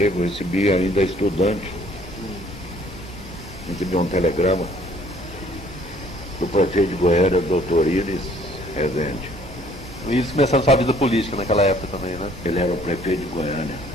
eu recebi ainda estudante. Recebi um telegrama do prefeito de Goiânia, doutor Iris Rezende. Isso começando sua vida política naquela época também, né? Ele era o prefeito de Goiânia.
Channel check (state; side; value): normal; both; correlation 0.59